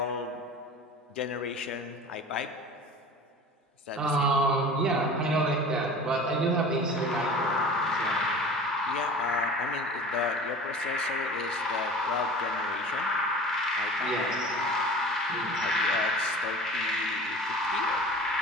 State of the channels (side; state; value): both; normal; correlation 0.39